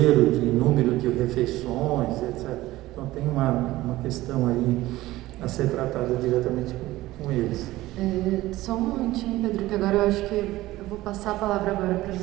de número de refeições, etc. Então tem uma questão aí a ser tratada diretamente com eles. Só um momentinho, Pedro, que agora eu acho que eu vou passar a palavra agora para os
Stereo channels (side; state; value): left; quieter; 17.1 dB